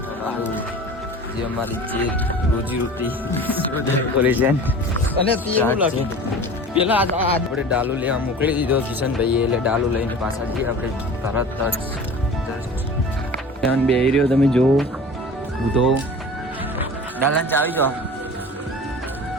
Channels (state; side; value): normal; both; correlation 0.39